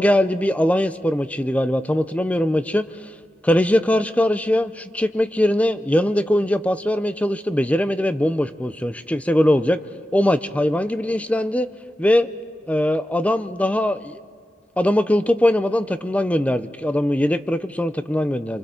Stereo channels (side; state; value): both; normal; correlation 0.92